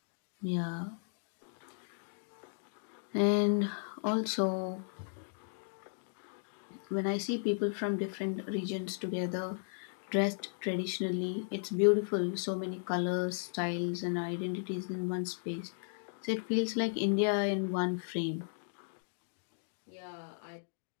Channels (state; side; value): silent; right; digital silence